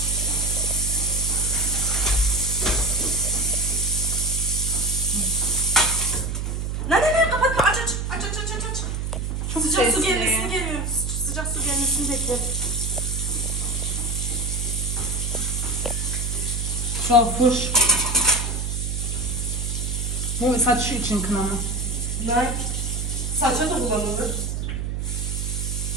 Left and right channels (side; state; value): right; noise; hum, 2 dB below the sound